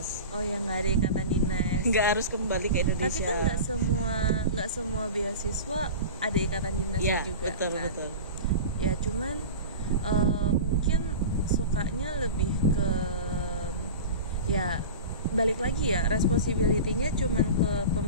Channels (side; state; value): both; inverted; correlation -0.32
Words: Oh ya, nggak ada ikatan dinas. Nggak harus kembali ke Indonesia. Tapi kan nggak semua beasiswa ada ikatan dinasnya ya, juga betul, kan. Betul. Ya cuman mungkin sukanya lebih ke ya balik lagi ya, responsibility-nya cuman ke